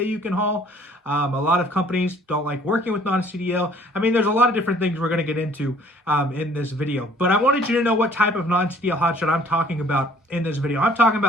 you can haul. A lot of companies don't like working with non-CDL. I mean, there's a lot of different things we're going to get into in this video. But I wanted you to know what type of non-CDL hotshot I'm talking about in this video. I'm talking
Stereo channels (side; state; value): both; normal; correlation 0.56